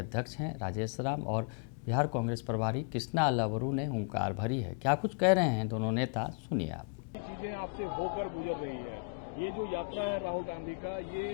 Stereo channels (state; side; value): quieter; right; 40.0 dB